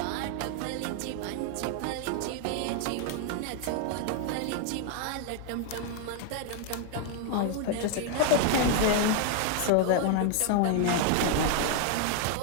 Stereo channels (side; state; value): both; different; correlation 0.00